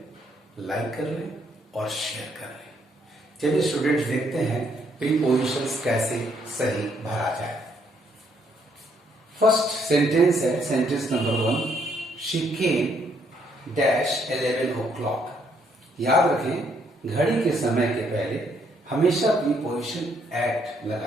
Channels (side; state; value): both; normal; correlation 0.71